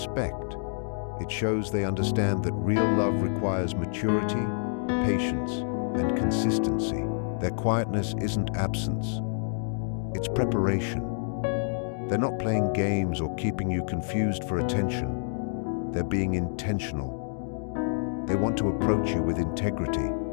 It shows they understand that real love requires maturity, patience, and consistency. Their quietness isn't absence. It's preparation. They're not playing games or keeping you confused for attention. They're being intentional. They want to approach you with integrity.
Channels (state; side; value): silent; right; digital silence